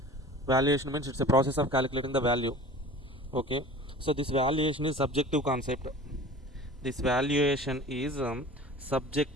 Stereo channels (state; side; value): normal; both; correlation 0.41